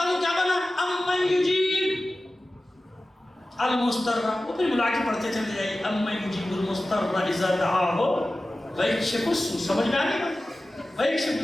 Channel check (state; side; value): normal; both; correlation 0.95